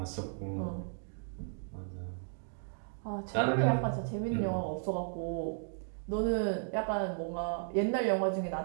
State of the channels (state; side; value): silent; left; digital silence